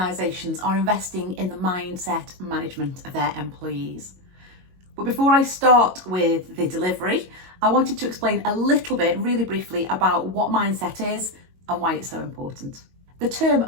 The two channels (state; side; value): late; left; 22 ms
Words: are investing in the mindset management of their employees. But before I start with the delivery, I wanted to explain a little bit, really briefly, about what mindset is and why it's so important. The term